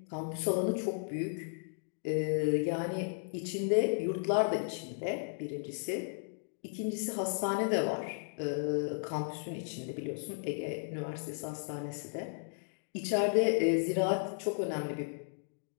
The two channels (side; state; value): right; silent; digital silence